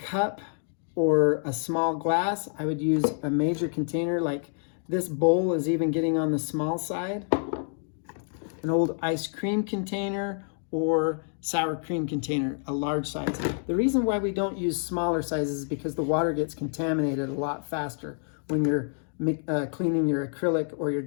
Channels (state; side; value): silent; right; 60 dB below the other